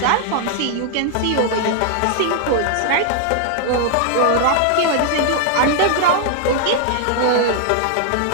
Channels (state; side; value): different; both; correlation 0.00